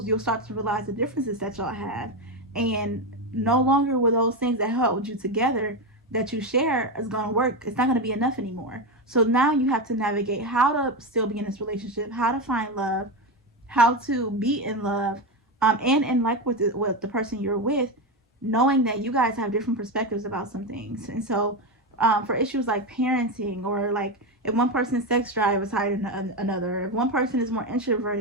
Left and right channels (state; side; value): normal; both; correlation 0.13